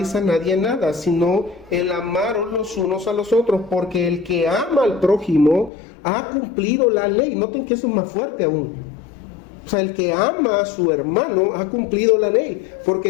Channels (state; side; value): drops out; right; at 5.7 s